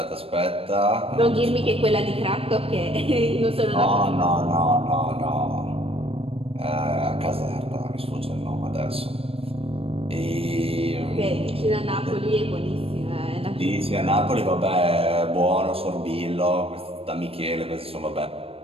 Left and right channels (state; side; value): late; left; 0.28 ms